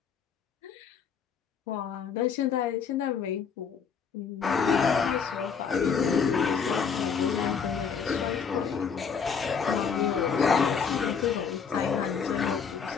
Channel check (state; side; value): quieter; right; 6.4 dB